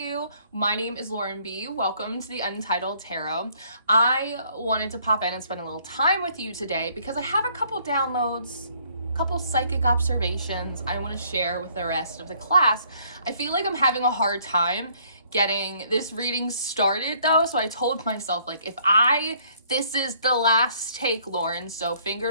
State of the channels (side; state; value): both; inverted; correlation -0.63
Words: My name is Lauren B. Welcome to the Untitled Tarot. I wanted to pop in and spend a little time with you today because I have a couple downloads, a couple psychic observations I want to share with the rest of the class. I feel like I'm having a hard time getting this reading started though, so I told myself, like, this is the last take, Lauren, so